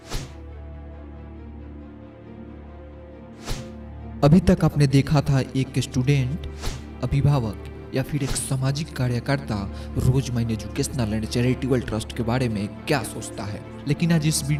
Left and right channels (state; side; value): identical; both; correlation 1.00